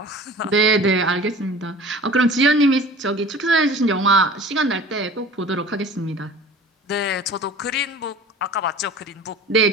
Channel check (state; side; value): normal; both; correlation 0.43